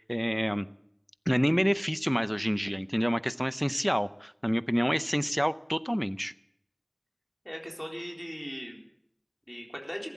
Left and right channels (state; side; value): identical; both; correlation 1.00